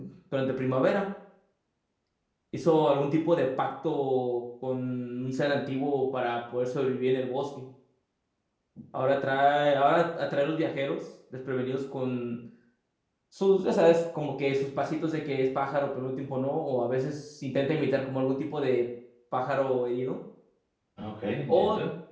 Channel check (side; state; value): both; identical; correlation 1.00